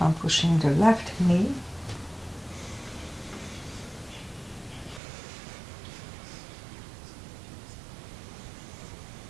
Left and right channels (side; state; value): left; drops out; at 5.0 s